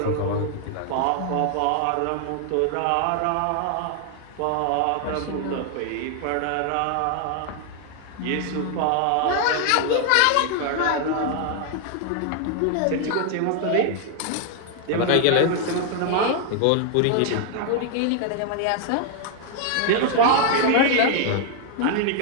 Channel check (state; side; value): different; both; correlation 0.00